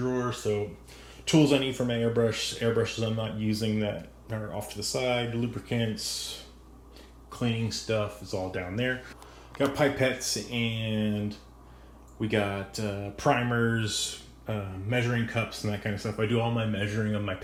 So tools I need for my airbrushes I'm not using that are off to the side, lubricants, cleaning stuff is all down there. Got pipettes, and we got primers, measuring cups and that kind of stuff. I do all my measuring of my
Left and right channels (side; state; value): both; identical; correlation 1.00